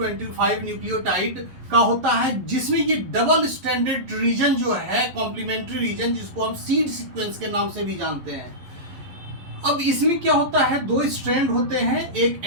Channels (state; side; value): late; left; 11 ms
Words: न्यूक्लियोटाइड का होता है, जिसमें ये डबल स्ट्रैंडेड रीजन जो है, कॉम्प्लीमेंट्री रीजन, जिसको हम सीड सीक्वेंस के नाम से भी जानते हैं। अब इसमें क्या होता है, दो स्ट्रैंड होते हैं। एक